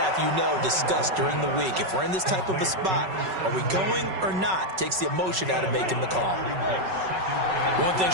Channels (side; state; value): left; late; 5.3 ms